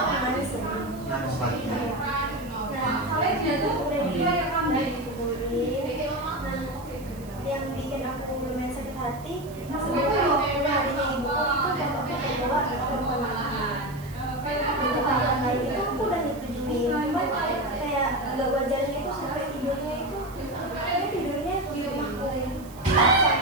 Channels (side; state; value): right; noise; hiss, 22 dB below the sound